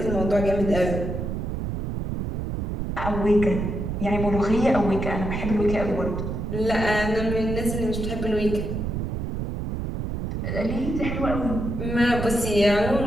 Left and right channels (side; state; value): right; noise; rumble, 3 dB below the sound